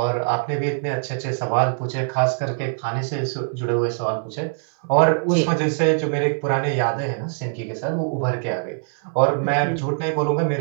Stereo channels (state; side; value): silent; left; 61 dB below the other